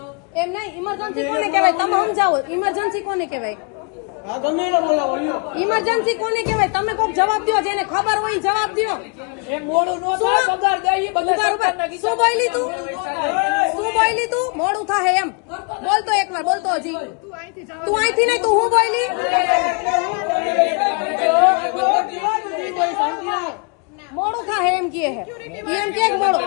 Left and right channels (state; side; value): quieter; right; 36.2 dB